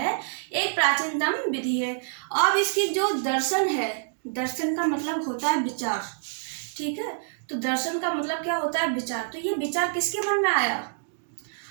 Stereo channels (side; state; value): left; silent; digital silence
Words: एक प्राचीनतम विधि है। अब इसकी जो दर्शन है, दर्शन का मतलब होता है विचार। ठीक है, तो दर्शन का मतलब क्या होता है? विचार। तो ये विचार किसके मन में आया?